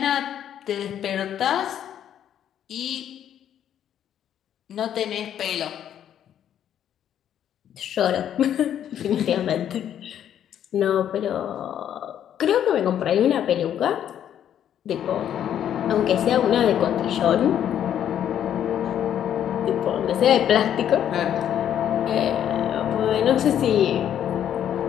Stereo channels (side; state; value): right; quieter; 10.0 dB